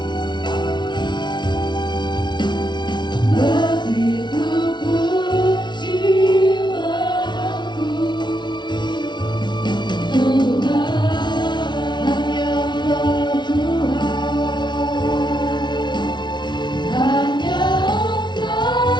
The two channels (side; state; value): right; late; 0.21 ms